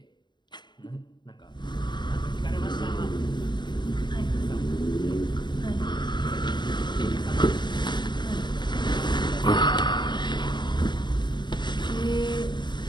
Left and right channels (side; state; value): right; late; 0.22 ms